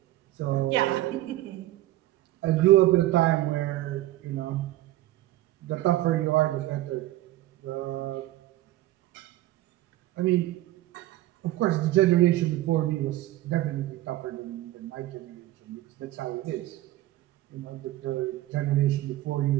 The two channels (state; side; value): quieter; left; 15.8 dB